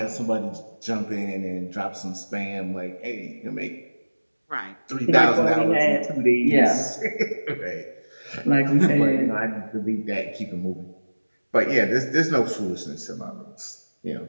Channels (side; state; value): both; inverted; correlation -1.00